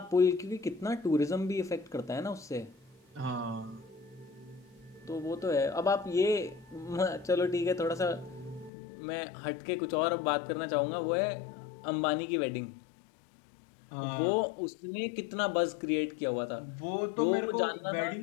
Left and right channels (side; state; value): right; drops out; at 8.7 s